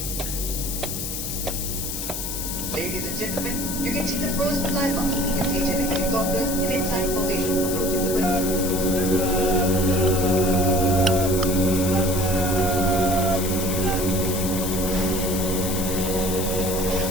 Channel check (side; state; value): left; noise; hiss, 5 dB below the sound